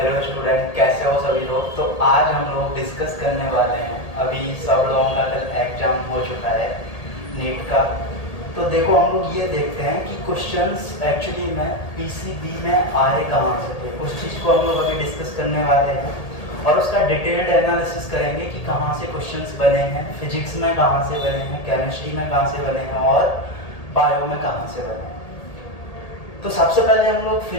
student, कैसे हो सभी लोग। तो आज हम लोग डिस्कस करने वाले हैं, अभी सब लोगों का कल एग्जाम हो चुका है नीट का। तो देखो हम लोग ये देखते हैं कि क्वेश्चंस एक्चुअली में पीसीबी में आए कहाँ से थे। उस चीज़ को हम लोग अभी डिस्कस करने वाले हैं और उसका डिटेल्ड एनालिसिस करेंगे कि कहाँ से क्वेश्चंस बने हैं, फिजिक्स में कहाँ से बने हैं, केमिस्ट्री में कहाँ से बने हैं और बायो में कहाँ से बने हैं। तो सबसे पहले हम लोग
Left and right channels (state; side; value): late; right; 1.8 ms